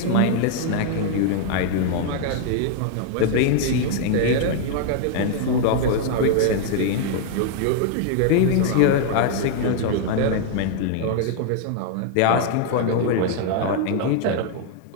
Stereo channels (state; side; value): different; both; correlation 0.00